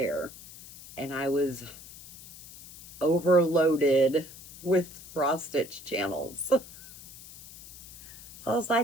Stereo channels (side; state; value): left; noise; hiss, 16 dB below the sound